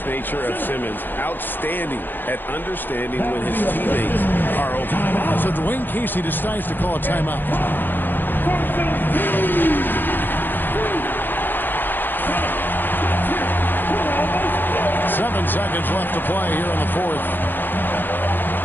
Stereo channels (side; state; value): right; late; 0.093 ms